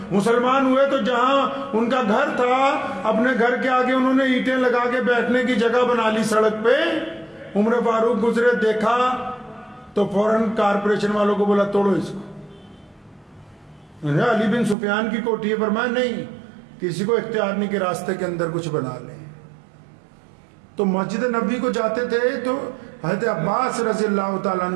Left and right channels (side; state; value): left; drops out; at 14.8 s